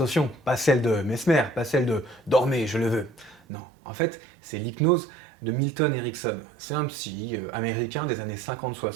pas celle de Mesmer, pas celle de dormez, je le veux. Non, en fait, c'est l'hypnose de Milton Erickson. C'est un psy américain des années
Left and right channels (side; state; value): left; drops out; at 3.4 s